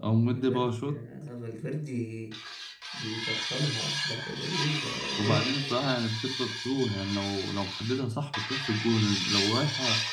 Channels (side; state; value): both; identical; correlation 1.00